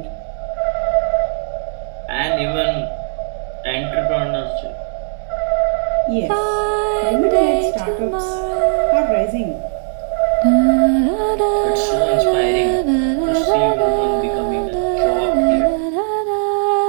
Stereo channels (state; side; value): silent; left; digital silence